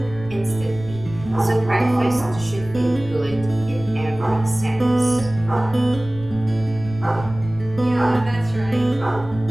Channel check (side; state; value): left; noise; rumble, 15 dB below the sound